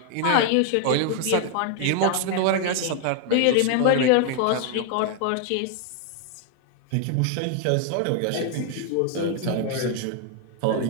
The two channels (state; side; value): different; both; correlation 0.00